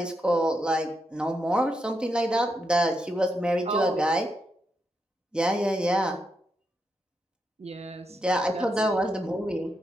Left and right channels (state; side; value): normal; both; correlation 0.83